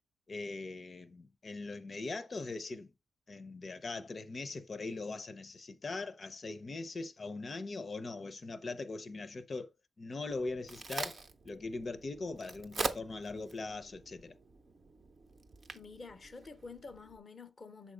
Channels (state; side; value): normal; both; correlation 0.90